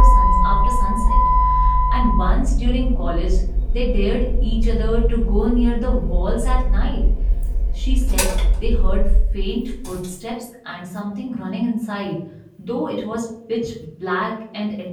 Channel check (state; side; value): identical; both; correlation 1.00